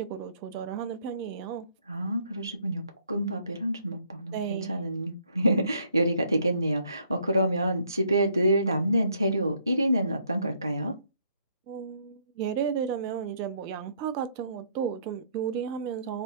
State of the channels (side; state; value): both; inverted; correlation -0.66